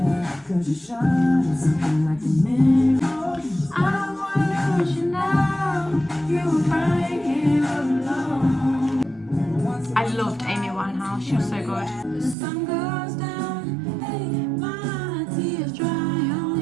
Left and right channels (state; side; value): drops out; left; at 12.4 s